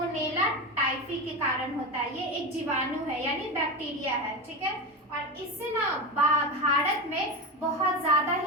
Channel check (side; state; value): both; normal; correlation 0.20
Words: टाइफी के कारण होता है। ये एक जीवाणु है यानी बैक्टीरिया है, ठीक है। और इससे ना भारत में बहुत ज्यादा